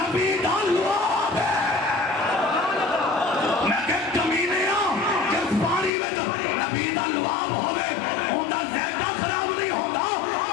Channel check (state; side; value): drops out; right; at 5.9 s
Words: दा लुआब है मैं के कमीने के पानी में नबी दा लुआब होवे ओंदा ज़ायका खराब नहीं होता